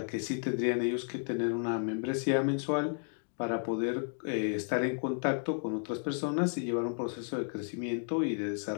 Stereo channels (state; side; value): silent; right; 56 dB below the other